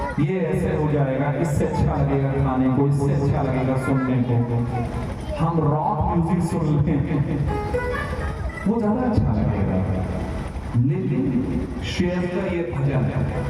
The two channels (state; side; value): identical; both; correlation 1.00